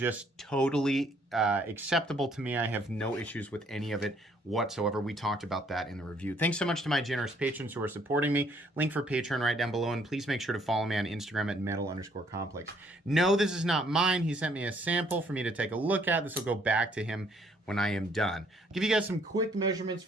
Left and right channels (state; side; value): normal; both; correlation 0.65